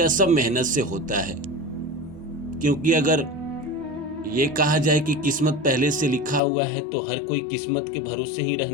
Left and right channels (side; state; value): right; drops out; at 6.4 s